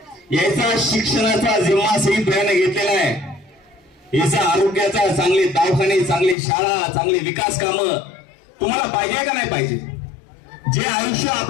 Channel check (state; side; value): drops out; right; at 6.4 s